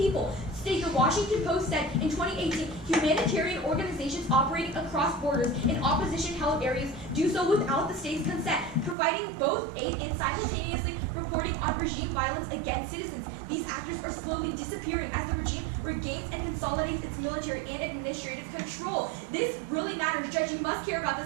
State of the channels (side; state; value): left; drops out; at 9.0 s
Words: The Washington Post said in 2018, humanitarian organizations operating across borders in opposition-held areas do so without the state's consent, providing both aid and simultaneously reporting on regime violence against citizens. These actors are slowly disappearing as the regime regains and consolidates its military and administrative control. This really matters, Judge. You must care about